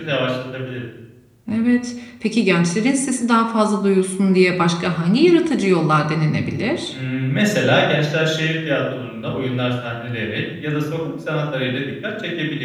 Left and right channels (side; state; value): both; identical; correlation 1.00